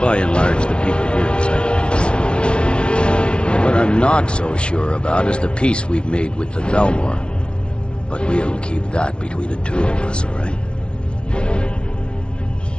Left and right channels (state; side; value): late; right; 0.058 ms